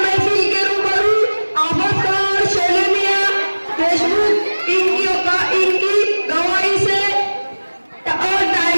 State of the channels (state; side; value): inverted; both; correlation -1.00